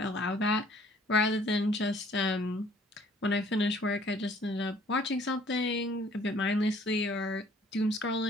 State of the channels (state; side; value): normal; both; correlation 0.58